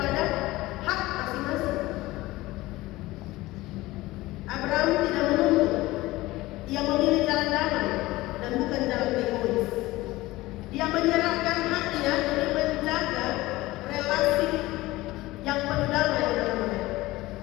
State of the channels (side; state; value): right; quieter; 18.8 dB